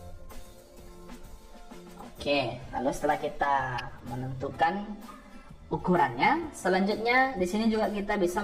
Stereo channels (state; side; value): identical; both; correlation 1.00